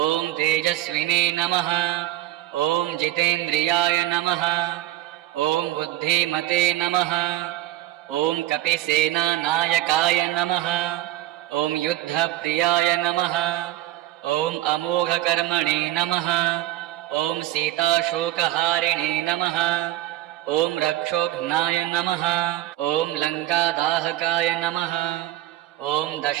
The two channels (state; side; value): quieter; left; 14.9 dB